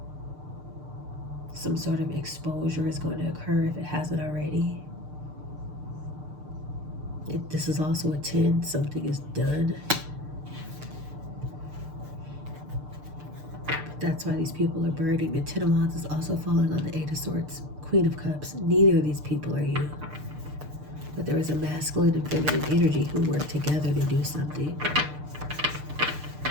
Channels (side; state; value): left; late; 6.7 ms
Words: Some sort of exposure is going to occur if it hasn't already. This is also a 10. Something is done. That's why these people are burning. The 10 of Wands is also falling on the 8 of Swords, Queen of Cups. Neither of these people are you. But there is a masculine and feminine energy who work together to do something.